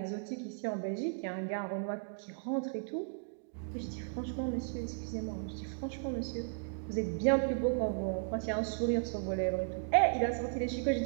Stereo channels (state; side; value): silent; left; digital silence